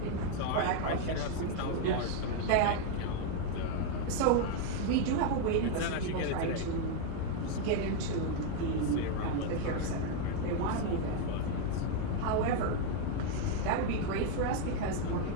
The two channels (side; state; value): both; different; correlation 0.01